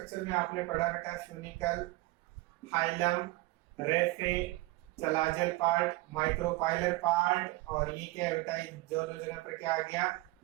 में आपने पढ़ा बेटा, funicle, hilum, raphe, चलाजल part, micropylar part. और ये क्या है बेटा, दोनों जगह पर क्या आ गया,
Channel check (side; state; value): left; quieter; 20.6 dB